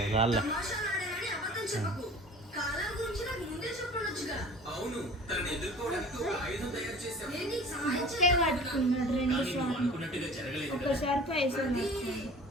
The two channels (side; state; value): both; normal; correlation 0.44